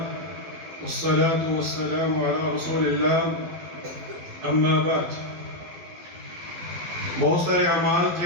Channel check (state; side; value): late; left; 12 ms